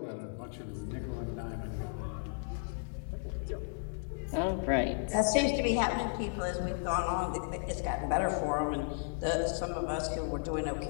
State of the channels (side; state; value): right; silent; digital silence